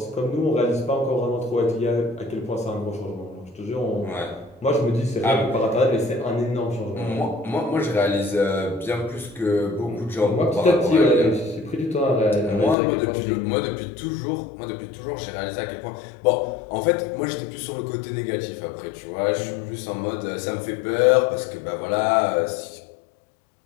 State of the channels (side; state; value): right; drops out; at 12.8 s